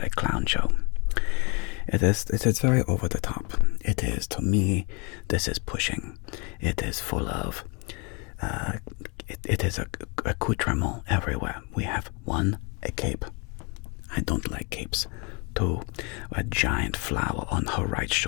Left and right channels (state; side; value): quieter; right; 32.1 dB